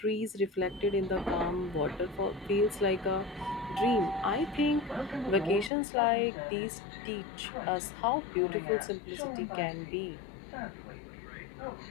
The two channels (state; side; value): drops out; right; at 5.7 s